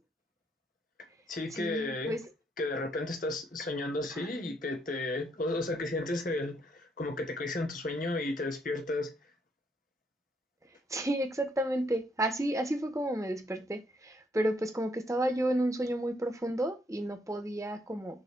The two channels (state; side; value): normal; both; correlation 0.72